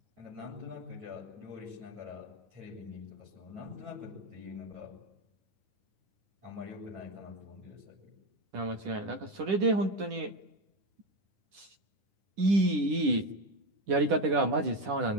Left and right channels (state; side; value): late; left; 10 ms